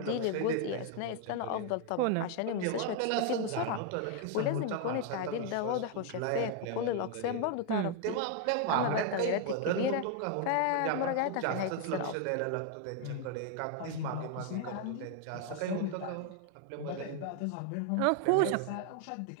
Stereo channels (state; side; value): different; both; correlation 0.00